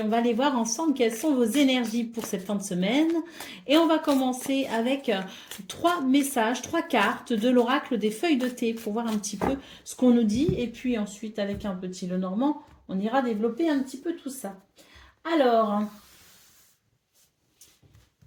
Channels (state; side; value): identical; both; correlation 1.00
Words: on va aller voir ensemble quelles sont vos énergies pour cette fin de semaine. Et on va commencer avec 3 messages, 3 cartes de l'oracle des feuilles de thé pour voir un petit peu ce qu'on nous dit. Et puis ensuite avec un petit Lenormand, on ira développer un petit peu tout ça. Alors,